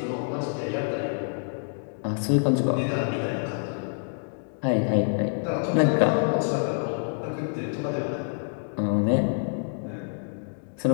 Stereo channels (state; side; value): silent; right; digital silence